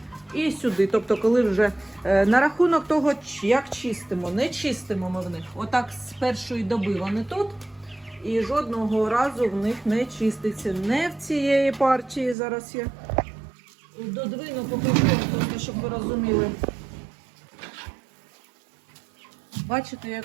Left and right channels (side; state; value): left; drops out; at 12.4 s